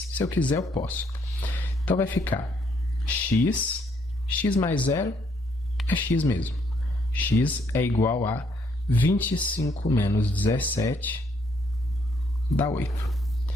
eu quiser eu posso. Então vai ficar x mais 0 é x mesmo. X é igual a 25 menos 17 dá 8.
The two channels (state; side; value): normal; both; correlation 0.70